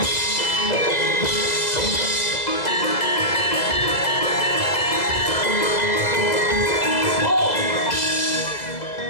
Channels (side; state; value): right; late; 2.0 ms